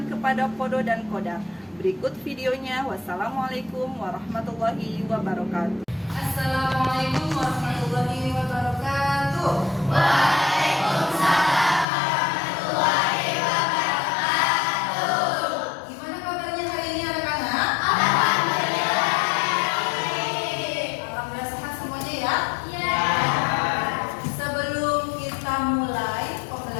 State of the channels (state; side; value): drops out; right; at 11.9 s